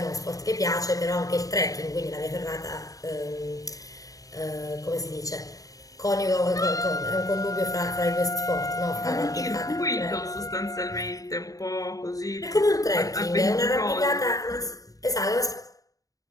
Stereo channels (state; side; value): late; right; 0.17 ms